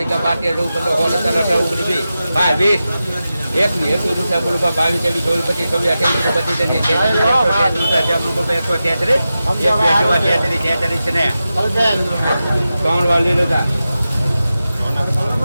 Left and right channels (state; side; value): inverted; both; correlation -0.92